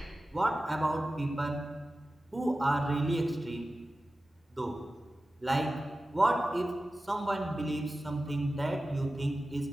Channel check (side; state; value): both; normal; correlation 0.95